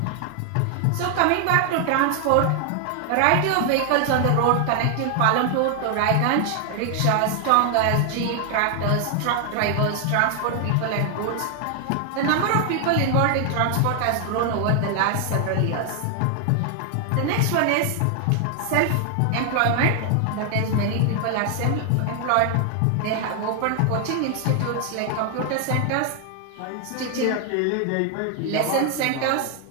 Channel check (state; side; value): different; both; correlation 0.00